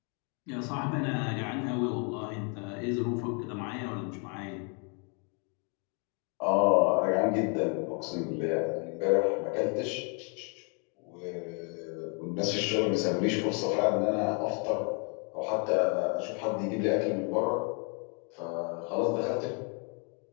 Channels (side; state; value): right; quieter; 37.3 dB